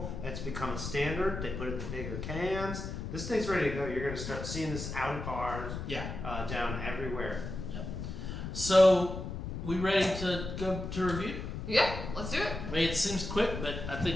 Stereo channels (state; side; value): noise; left; rumble, 6 dB below the sound